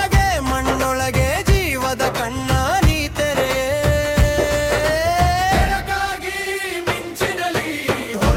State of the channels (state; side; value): identical; both; correlation 1.00